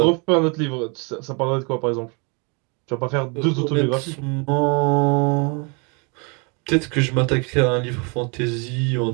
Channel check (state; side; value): quieter; left; 33.2 dB